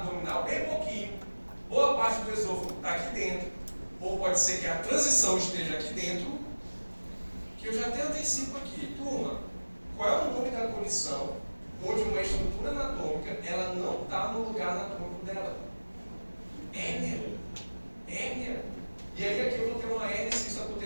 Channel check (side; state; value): both; inverted; correlation -1.00